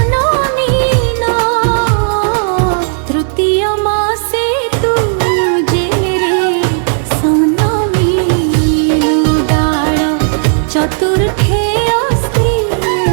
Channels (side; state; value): left; silent; digital silence